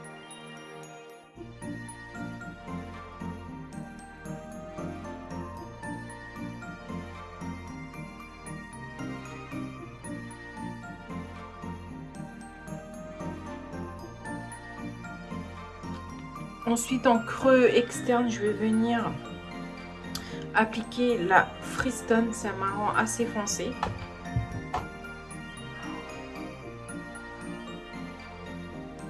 Ensuite, en creux externe, je vais venir appliquer la Freestone. C'est un marron assez foncé.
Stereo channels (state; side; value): identical; both; correlation 1.00